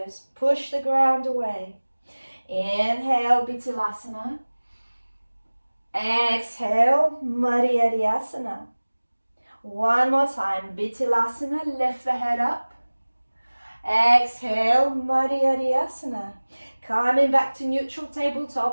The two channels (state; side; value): inverted; both; correlation -1.00